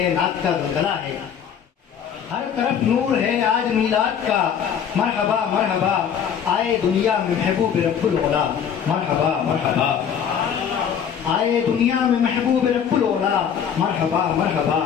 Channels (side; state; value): right; quieter; 8.0 dB